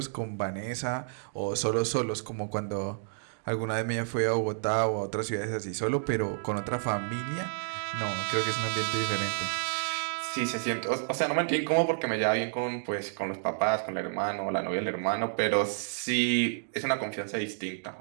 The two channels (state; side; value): silent; left; digital silence